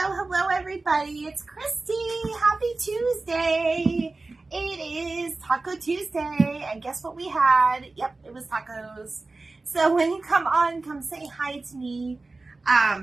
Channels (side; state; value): left; quieter; 3.4 dB